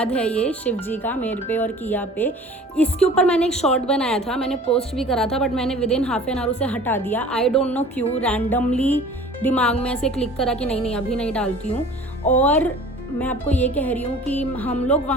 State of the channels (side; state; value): both; normal; correlation 0.45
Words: है ये शिव जी का मेरे पे और किया पे। इसके ऊपर मैंने एक शॉर्ट बनाया था, मैंने पोस्ट भी करा था, बट मैंने विदिन हाफ एन आवर उसे हटा दिया। आई डोंट नो क्यों, रैंडमली दिमाग में ऐसे क्लिक करा कि नहीं अभी नहीं डालती हूँ। और मैं आपको ये कह रही हूँ कि हम लोग